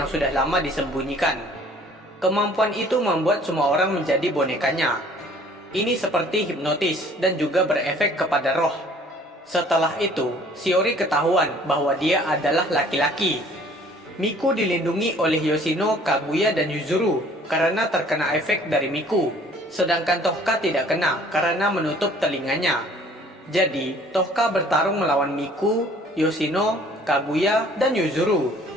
sudah lama disembunyikan. Kemampuan itu membuat semua orang menjadi bonekanya. Ini seperti hipnotis dan juga berefek kepada roh. Setelah itu, Shiori ketahuan bahwa dia adalah laki-laki. Miku dilindungi oleh Yoshino, Kaguya, dan Yuzuru karena terkena efek dari Miku, sedangkan Tohka tidak kena karena menutup telinganya. Jadi, Tohka bertarung melawan Miku, Yoshino, Kaguya, dan Yuzuru.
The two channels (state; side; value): normal; both; correlation 0.54